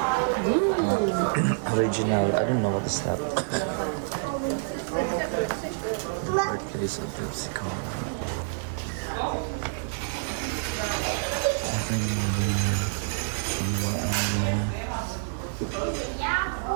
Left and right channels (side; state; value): left; silent; digital silence